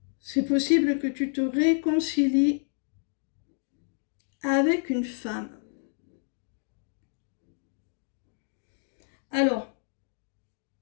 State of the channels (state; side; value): silent; right; 58 dB below the other